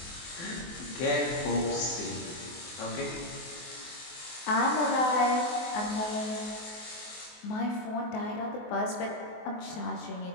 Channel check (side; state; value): right; late; 24 ms